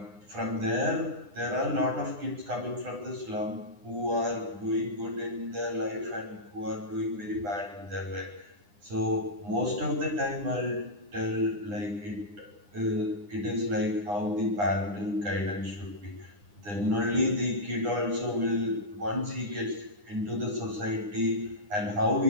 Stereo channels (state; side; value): late; left; 9.8 ms